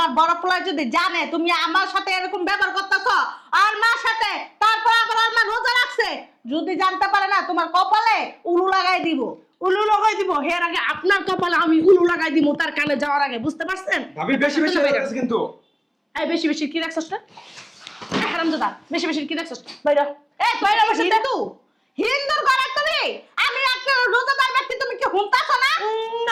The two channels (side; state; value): both; identical; correlation 1.00